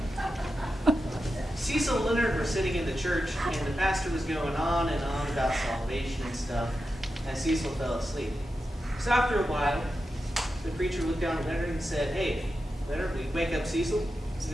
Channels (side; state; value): both; normal; correlation 0.90